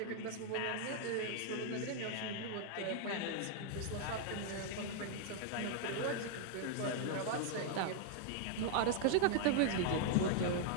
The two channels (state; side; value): different; both; correlation 0.00